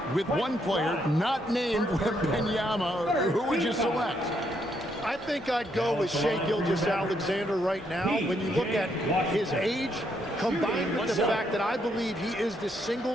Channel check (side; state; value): both; normal; correlation 0.75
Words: with one player not named Wembanyama, who would you select? I think I'd go with Shai Gilgeous-Alexander right now. When you look at his age, combined with the fact that I believe he is the